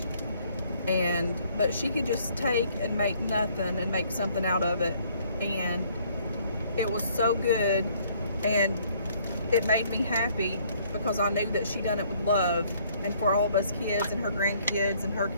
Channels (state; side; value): inverted; both; correlation -0.63